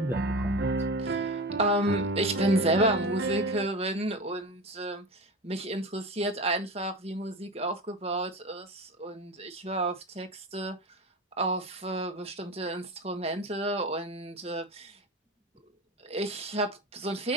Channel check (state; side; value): normal; both; correlation 0.27